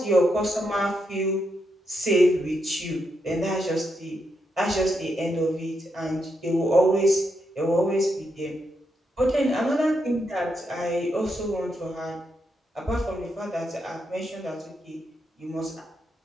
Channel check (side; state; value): both; normal; correlation 0.82